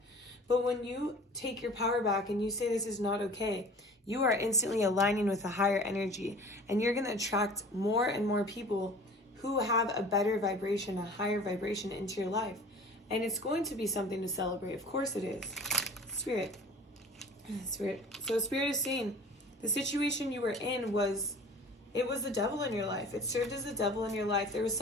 But when you take your power back and you say this is not okay, you are instantly aligning with a higher energy, and you're going to attract more and more people who have a better vibration, a higher vibration into your life. And it's going to be something to celebrate. Of course it is. Spirit. So Spirit is saying the situation you were in was the devil in your life. It served as the devil in your life. There was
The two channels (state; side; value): normal; both; correlation 0.43